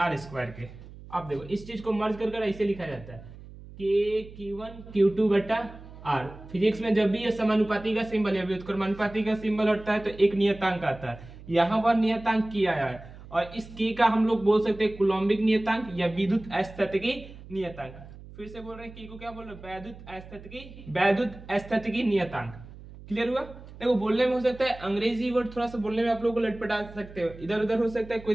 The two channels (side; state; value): right; noise; hum, 17 dB below the sound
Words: के। अब देखो इस चीज को मर्ज कर ऐसे लिखा जाता है कि Q1 Q2 बटा R। फिजिक्स में जब भी ये समानुपाती का सिंबल या व्युत्क्रमानुपाती का सिंबल हटता है तो एक नियतांक आता है, यहाँ पर नियतांक K आया है, और इस K का हम लोग बोल सकते हैं कूलॉम्बिक नियतांक या विद्युत स्थैतिकी नियतांक। फिर से बोल रहे हैं K को क्या बोल रहे हैं? वैद्युत स्थैतिकी नियतांक। क्लियर हुआ? देखो बोलने में हो सकता है अंग्रेजी वर्ड थोड़ा सा बोलने में आप लोगों को लटपटा सकते हो, इधर उधर हो सकता है, कोई